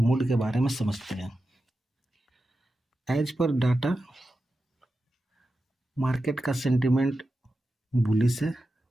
के बारे में समझते हैं। एज पर डाटा मार्केट का सेंटिमेंट बुलिश है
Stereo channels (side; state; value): both; normal; correlation 0.91